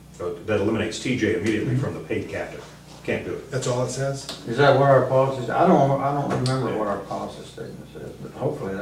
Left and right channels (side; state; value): both; identical; correlation 1.00